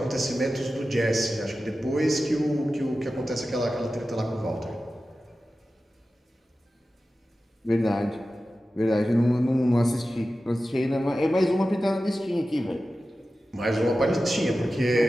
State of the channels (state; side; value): normal; both; correlation 0.94